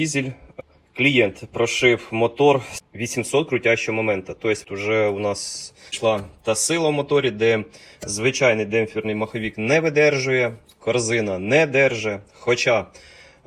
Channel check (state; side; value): identical; both; correlation 1.00